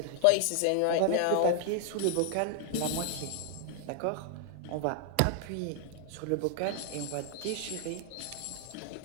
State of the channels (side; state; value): both; different; correlation 0.00